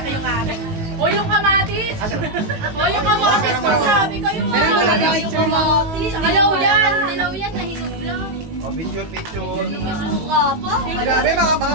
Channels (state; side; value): late; left; 18 ms